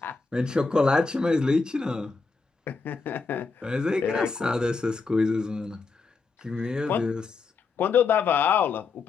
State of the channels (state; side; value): quieter; right; 4.5 dB